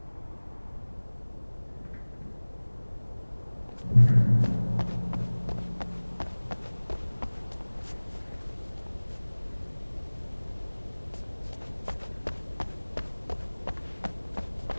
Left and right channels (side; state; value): both; inverted; correlation -1.00